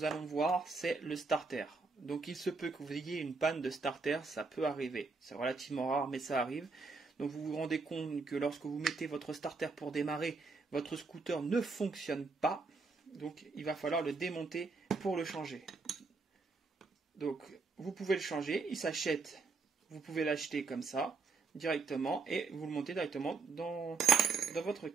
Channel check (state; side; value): quieter; left; 4.3 dB